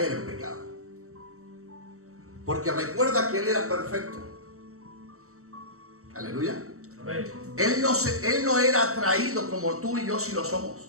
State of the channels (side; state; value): left; late; 0.64 ms